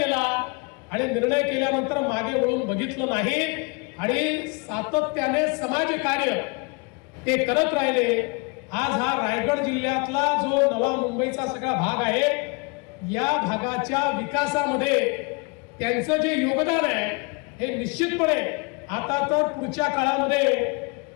आणि निर्णय केल्यानंतर मागे वळून बघितलं नाही आणि सातत्याने समाजकार्य ते करत राहिले। आज हा रायगड जिल्ह्यातला जो नवा मुंबईचा सगळा भाग आहे, या भागाच्या विकासामध्ये त्यांचं जे योगदान आहे हे निश्चितपणे आता तर पुढच्या काळामध्ये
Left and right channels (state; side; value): quieter; right; 30.7 dB